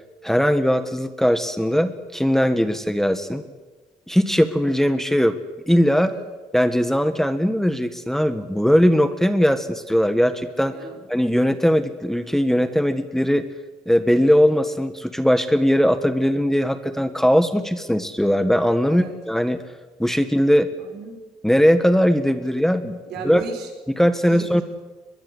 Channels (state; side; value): normal; both; correlation 0.97